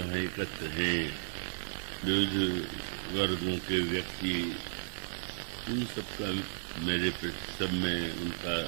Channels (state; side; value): silent; left; digital silence